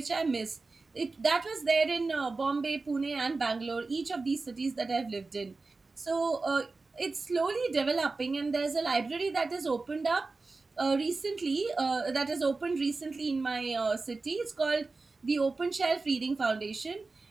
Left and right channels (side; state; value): left; quieter; 3.7 dB